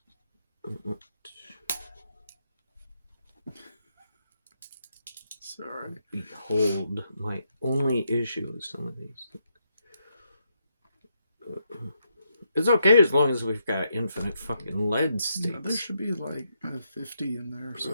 Sorry. Behold my only issue with some of these things. It's okay as long as we've got infinite fucking lead states. Yeah, there should be like 50 in there.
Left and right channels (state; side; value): inverted; both; correlation -0.80